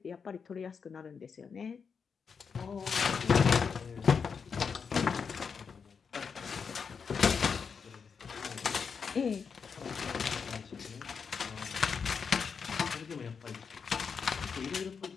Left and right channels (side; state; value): right; quieter; 6.0 dB